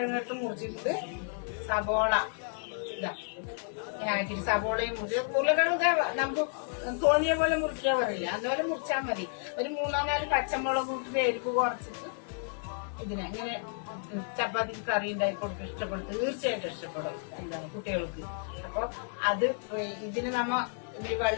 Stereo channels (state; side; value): silent; right; 57 dB below the other